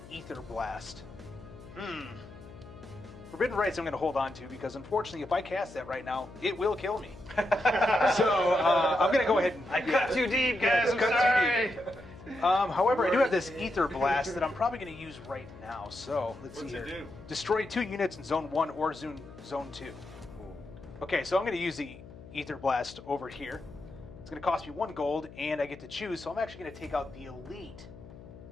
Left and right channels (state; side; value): noise; left; hum, 17 dB below the sound